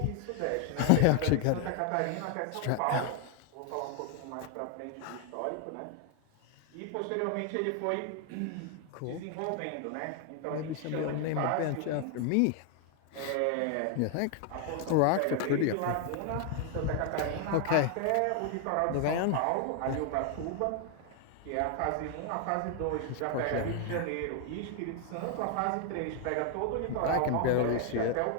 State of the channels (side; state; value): both; different; correlation 0.00